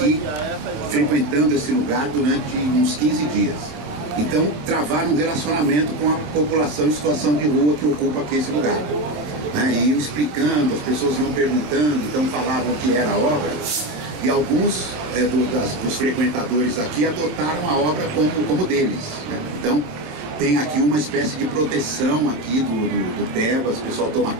frequentando esse lugar durante uns 15 dias. Então travaram um relacionamento com a população em situação de rua que ocupa aqui esse lugar. né, e iam explicando, as pessoas iam perguntando, então falavam o que era a obra, e alguns dos frequentadores aqui adotaram a obra como deles, né? Então tem aqui uma espécie de proteção aqui do Tebas, o pessoal toma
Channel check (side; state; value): left; late; 26 ms